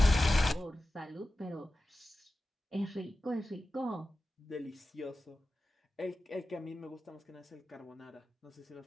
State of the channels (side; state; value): both; normal; correlation 0.94